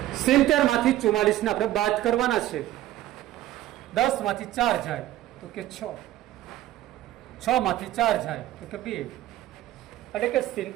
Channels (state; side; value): quieter; left; 14.3 dB